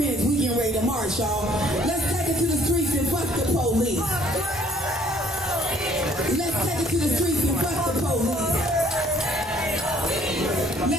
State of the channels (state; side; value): normal; both; correlation 0.60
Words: We getting ready to march, y'all. Let's take it to the streets and fuck the police. Let's take it to the streets and fuck the police.